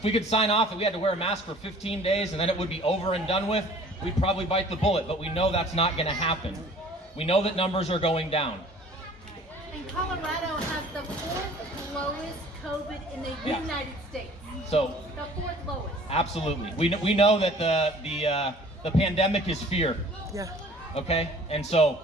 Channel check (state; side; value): normal; both; correlation 0.50